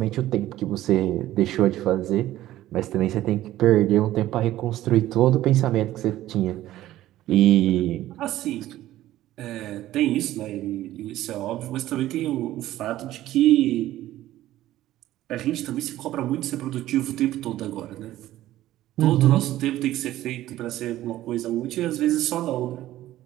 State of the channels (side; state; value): left; quieter; 14.5 dB